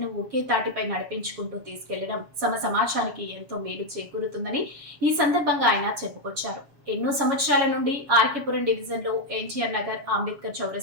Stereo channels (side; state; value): left; late; 7.1 ms